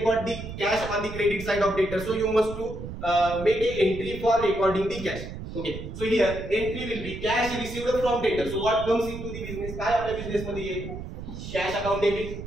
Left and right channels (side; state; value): right; noise; rumble, 9 dB below the sound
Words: the cash on the credit side of debtors? So you must to make a entry for recording the cash. Okay. So here entry will be cash received from debtors. So what comes into the business? काय आपल्या business मध्ये येईल? Cash account debit.